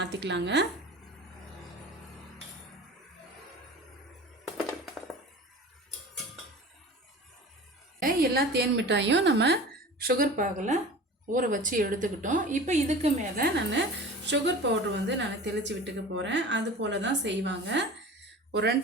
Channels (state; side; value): normal; both; correlation 0.38